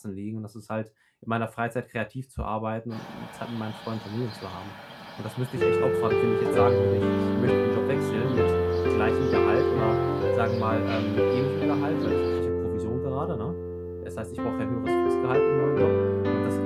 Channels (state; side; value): identical; both; correlation 1.00